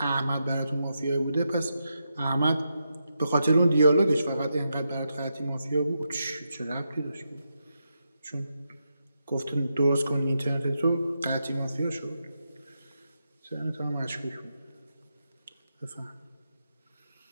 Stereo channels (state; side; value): inverted; both; correlation -0.85